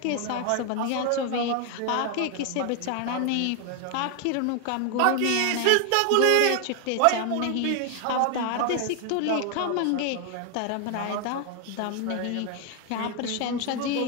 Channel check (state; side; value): different; both; correlation 0.00